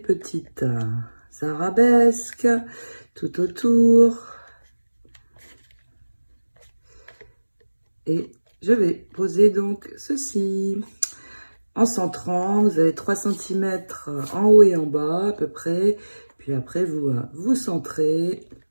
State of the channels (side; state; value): both; inverted; correlation -1.00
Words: arabesques tout autour. Et je vais poser donc ceci. En centrant, vous avez 3 cm en haut et en bas à peu près. Puis après, vous centrez.